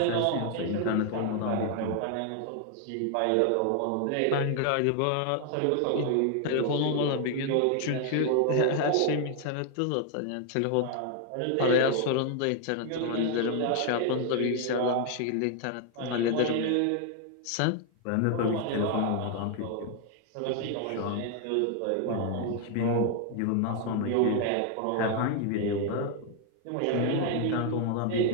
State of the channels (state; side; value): different; both; correlation 0.00